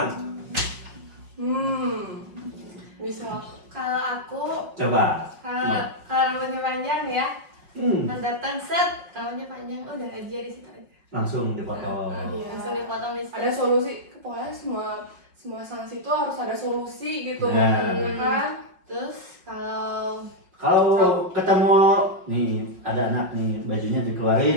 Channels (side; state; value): left; late; 5.4 ms